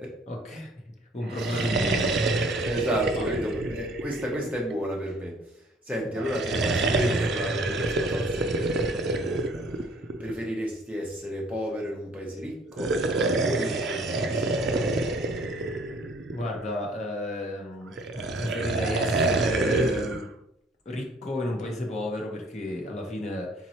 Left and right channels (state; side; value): normal; both; correlation 0.56